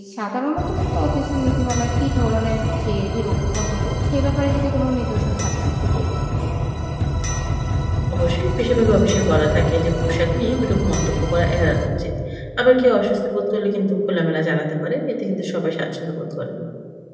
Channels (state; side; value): identical; both; correlation 1.00